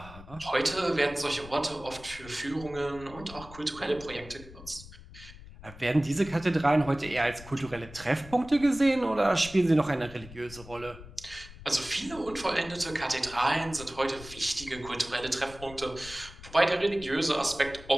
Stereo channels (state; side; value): noise; left; rumble, 17 dB below the sound